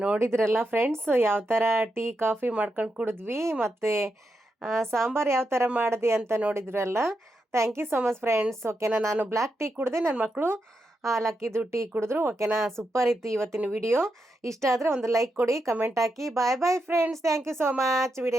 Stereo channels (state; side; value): normal; both; correlation 0.84